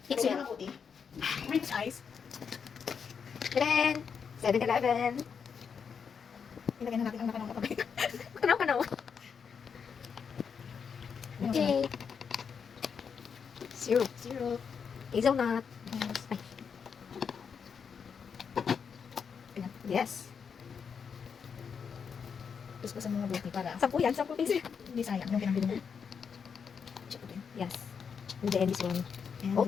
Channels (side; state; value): right; quieter; 6.5 dB